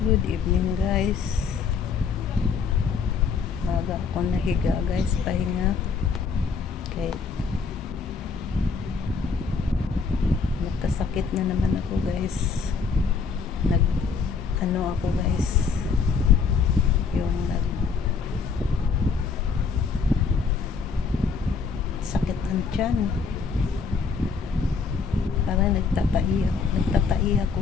Good evening guys. Maga ako nahiga guys, pahinga. Okay. Nagkasakit na naman ako guys. Ako guys. Yung sakit ang tiyan. Parang nagtatai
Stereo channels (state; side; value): quieter; right; 5.3 dB